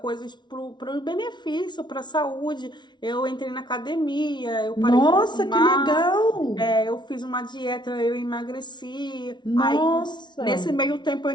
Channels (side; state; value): right; late; 0.21 ms